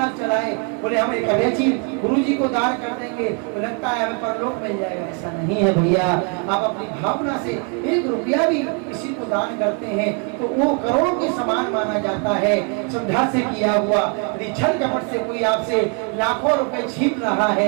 चलाए, बोले हम एक अवैची गुरु जी को दान कर देंगे तो लगता है हमें परलोक मिल जाएगा। ऐसा नहीं है भैया। आप अपनी भावना से 1 रुपया भी किसी को दान करते हैं तो वो करोड़ों के समान माना जाता है, श्रद्धा से किया हुआ। यदि छल कपट से कोई आपसे लाखों रुपए छीन रहा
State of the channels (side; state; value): left; quieter; 37.2 dB